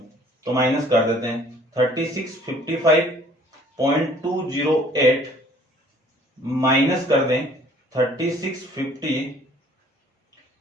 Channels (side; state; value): both; normal; correlation 0.55